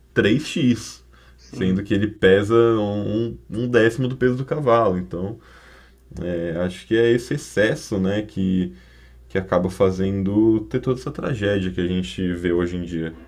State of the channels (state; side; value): identical; both; correlation 1.00